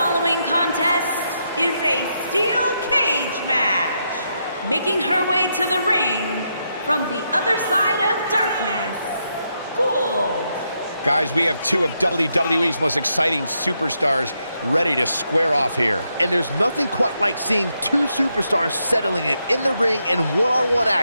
contest is a steel cage match. Making her way to the ring from the other side of darkness, Gould. Guys, we have two of WWE's most exciting superstars ready to square off here. And there's nothing quite like seeing two superstars settling it in the ring in one-on-one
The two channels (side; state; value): both; inverted; correlation -0.81